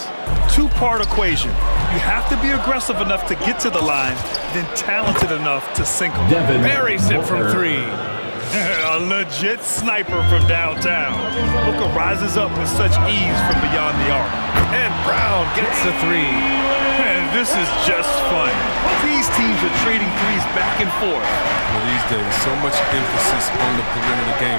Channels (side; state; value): both; inverted; correlation -1.00